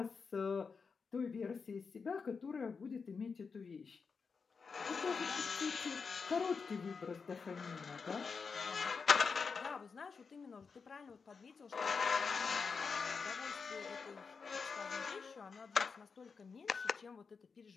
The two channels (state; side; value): quieter; right; 5.3 dB